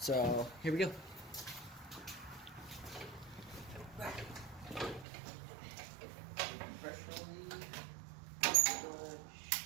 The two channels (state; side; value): drops out; left; at 5.1 s